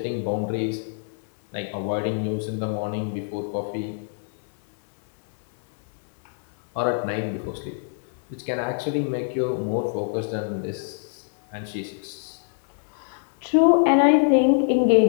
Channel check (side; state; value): right; silent; 60 dB below the other